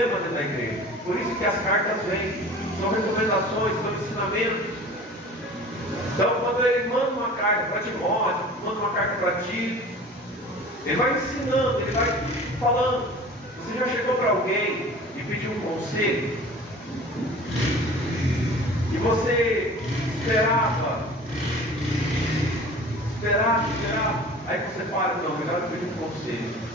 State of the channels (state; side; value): normal; both; correlation 0.42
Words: dentro da igreja. Por isso que as cartas vêm, são recomendações, são ensinamentos. Então, quando ele manda uma carta para Timóteo, manda uma carta para Tito, ele vai ensinando, ele vai falando. Você já chegou para alguém e pediu um conselho? E você esperava. Aí você para, não, melhor eu pedir um conselho.